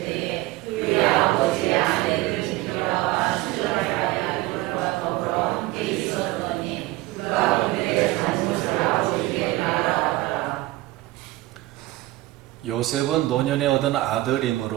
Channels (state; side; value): quieter; left; 18.3 dB